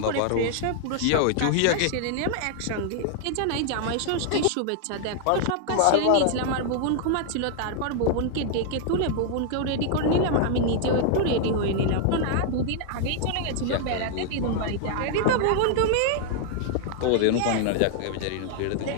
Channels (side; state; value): both; different; correlation 0.00